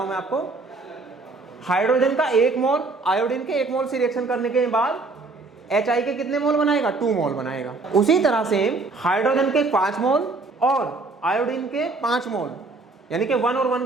हूं मैं आपको. हाइड्रोजन का 1 मोल आयोडीन के 1 मोल से रिएक्शन करने के बाद HI के कितने मोल बनाएगा 2 मोल बनाएगा. उसी तरह से हाइड्रोजन के 5 मोल और आयोडीन के 5 मोल यानी कि 1 और 1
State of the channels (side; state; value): left; quieter; 3.6 dB